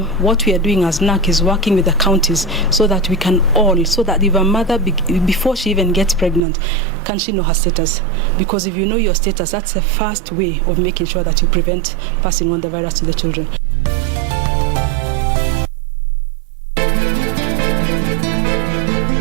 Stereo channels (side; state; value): left; drops out; at 6.5 s